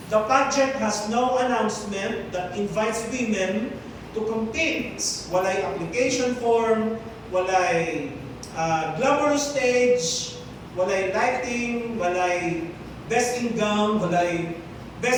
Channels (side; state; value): both; identical; correlation 1.00